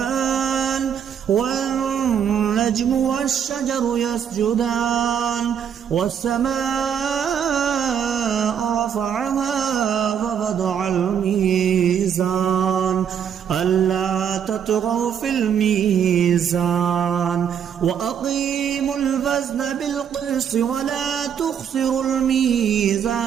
والنجم والشجر يسجدان والسماء رفعها ووضع الميزان ألا تطغوا في الميزان وأقيموا الوزن بالقسط ولا تخسروا الميزان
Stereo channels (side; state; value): left; quieter; 8.2 dB